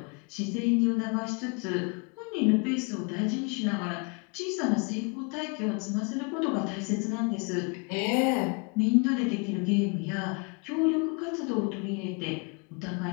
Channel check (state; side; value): quieter; right; 33.2 dB